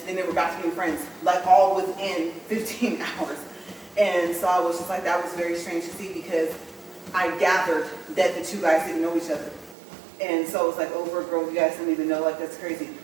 then they were back to being friends, like all within 15 hours. And so I was just like, that was very strange to see, because I gathered that the two guys didn't know each other. And so it was like, over a girl you guys don't even know, like, that's crazy.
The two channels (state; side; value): drops out; left; at 9.8 s